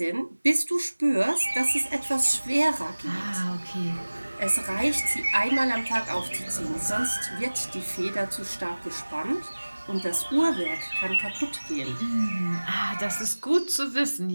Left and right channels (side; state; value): both; inverted; correlation -1.00